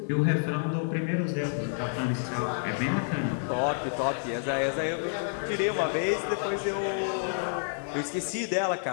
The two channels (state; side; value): silent; right; digital silence